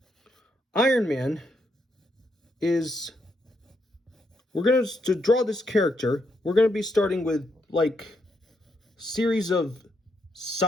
Iron Man to draw this character, we're going to be starting with like series of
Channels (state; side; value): normal; both; correlation 0.78